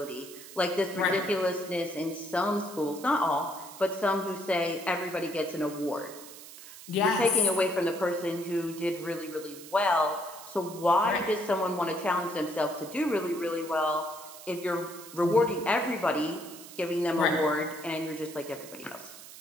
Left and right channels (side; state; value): right; noise; hiss, 16 dB below the sound